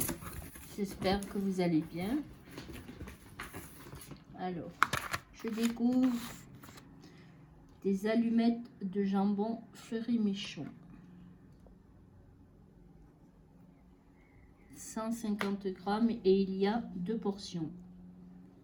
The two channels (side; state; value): both; identical; correlation 1.00